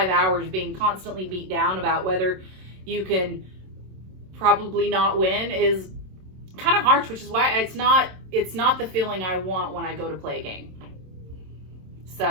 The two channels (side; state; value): left; late; 27 ms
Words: hours being constantly beat down about whether you can probably not win is kind of harsh, which is why it's not the feeling I want when I go to play a game.